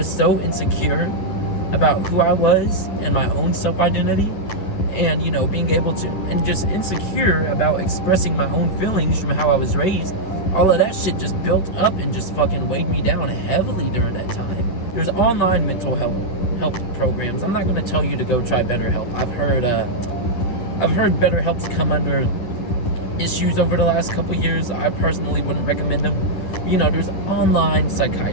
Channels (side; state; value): right; late; 10 ms